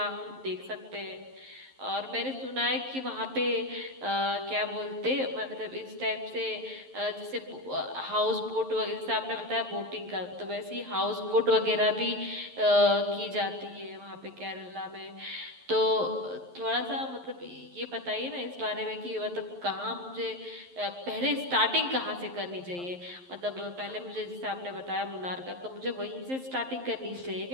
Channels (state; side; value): late; left; 11 ms